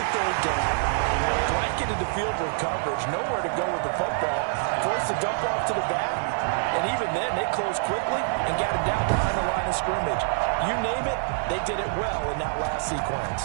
the third down, blanketed the field with coverage, nowhere to go with the football, forced the dump off to the back, and even then they closed quickly and got it down behind the line of scrimmage. You name it, they did it well in that last sequence.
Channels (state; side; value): silent; left; digital silence